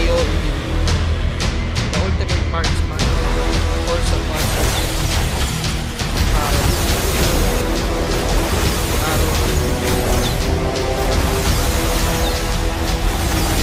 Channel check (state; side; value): identical; both; correlation 1.00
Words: The Ultimate Marksman. Force of Marksman. Arrow.